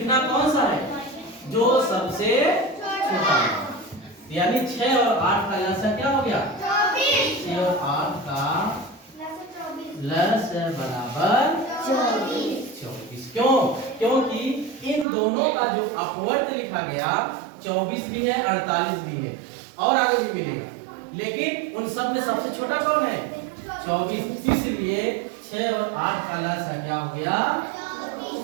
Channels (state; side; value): drops out; left; at 15.1 s